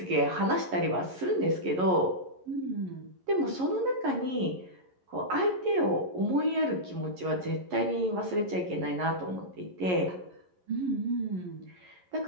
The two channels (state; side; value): late; left; 11 ms